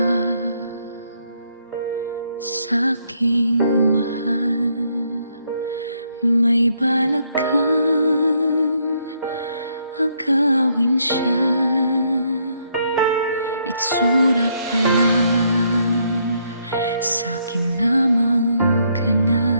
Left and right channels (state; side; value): inverted; both; correlation -0.73